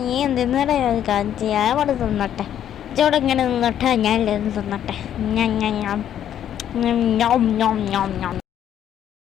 നീ എന്തിനാ കാണിച്ച്? ഞാൻ അവിടെ തിന്നട്ടെ. ഇച്ചോടെ ഇങ്ങനെ നിന്നട്ടെ, ഞാൻ തിന്നട്ടെ.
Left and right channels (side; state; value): right; quieter; 10.3 dB